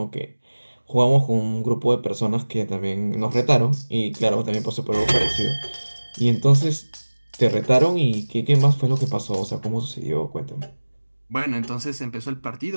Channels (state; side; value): inverted; both; correlation -1.00